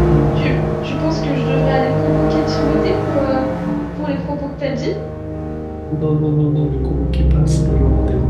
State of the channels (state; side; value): identical; both; correlation 1.00